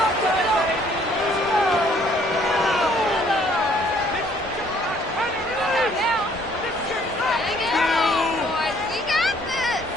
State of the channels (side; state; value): both; normal; correlation 0.62